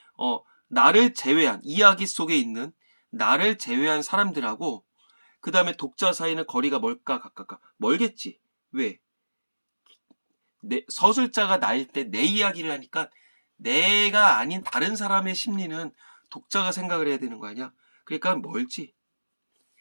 나를 제외한, 이야기 속에 있는 나를 제외한 사람들하고, 그 다음에 독자 사이는 거리가 멀까, 가깝까? 멀겠지. 왜? 서술자가 나일 때 내 이야기를 하니까 내가 아닌 다른 사람의 심리는 독자가 생각을 해야 되는 거 아니야? 그러니까 멀지.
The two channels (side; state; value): both; inverted; correlation -1.00